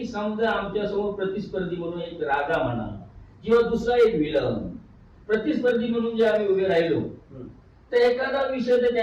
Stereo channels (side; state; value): both; identical; correlation 1.00